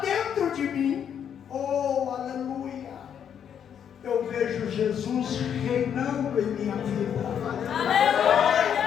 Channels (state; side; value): quieter; right; 8.5 dB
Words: de mim. Oh, aleluia! Eu vejo Jesus reinando em minha vida.